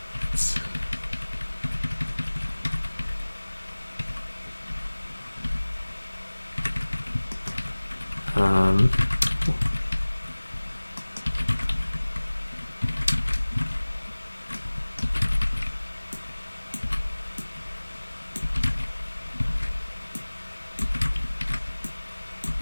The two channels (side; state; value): both; inverted; correlation -1.00